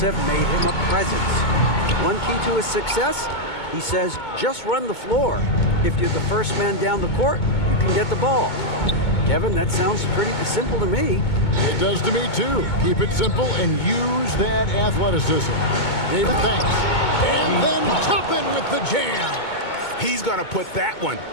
made him a presence. One key to his success, he says, just run the floor. If you're the first man down the court, you can get the ball. Kevin, that sounds pretty simple to me. It does to me, too. Keep it simple and use that athleticism. David, thanks. And then Toppin with the jam. He's going to put that one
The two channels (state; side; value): late; right; 2.2 ms